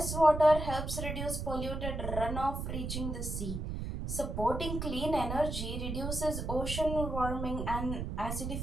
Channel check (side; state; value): right; noise; rumble, 4 dB below the sound